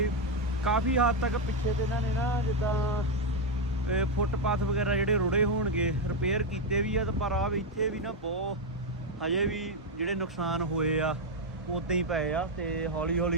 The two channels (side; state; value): both; normal; correlation 0.03